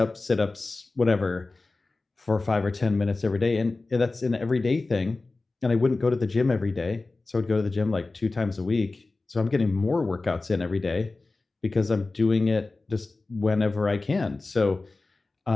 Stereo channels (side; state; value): right; quieter; 3.4 dB